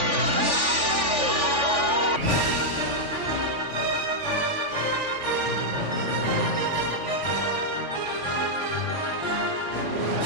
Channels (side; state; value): left; late; 3.5 ms